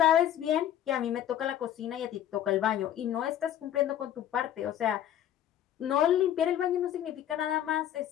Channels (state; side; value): quieter; right; 11.0 dB